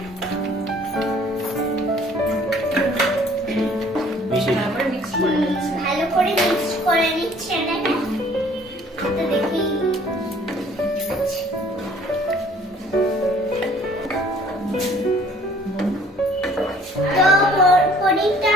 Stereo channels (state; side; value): normal; both; correlation 0.57